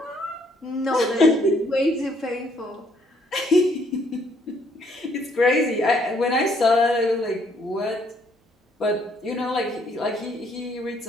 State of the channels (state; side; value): normal; both; correlation 0.67